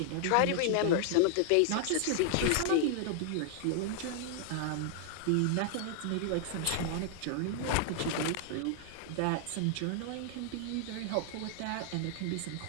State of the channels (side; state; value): both; different; correlation 0.00